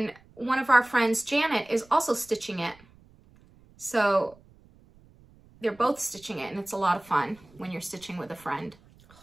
one of our friends, Janet, is also stitching it. So they're both stitching it, and it's a lot of fun when you're stitching with a friend.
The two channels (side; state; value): right; noise; rumble, 27 dB below the sound